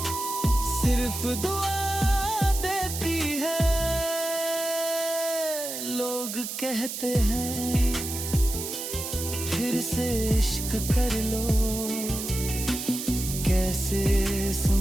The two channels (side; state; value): right; noise; hiss, 6 dB below the sound